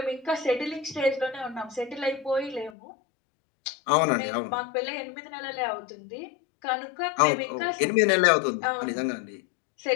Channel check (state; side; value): drops out; right; at 2.7 s